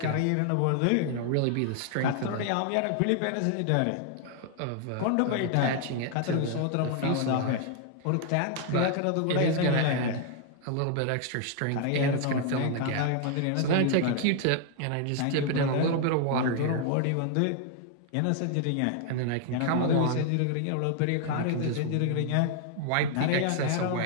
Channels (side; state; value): both; different; correlation 0.00